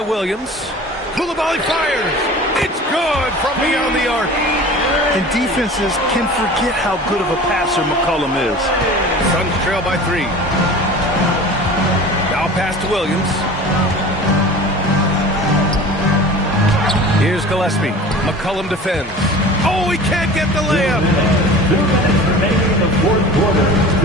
Williams. Koulibaly fires. It's good from beyond the arc. And defenses can forget how good of a passer McCollum is. Suns trail by 3. Now pass to Williams. Here's Gillespie. McCollum defends. Oh, he can't get the layup. 2 minutes remaining in the fourth quarter.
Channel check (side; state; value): both; normal; correlation 0.39